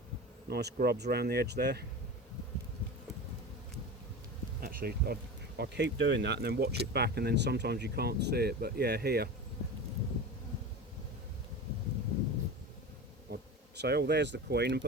Nice grubs around the edge there. Actually, I keep doing that and then watch it back, and then sometimes you can't see it. But yeah, here. I'd say, oh, there's the queen, and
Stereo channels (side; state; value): both; normal; correlation 0.29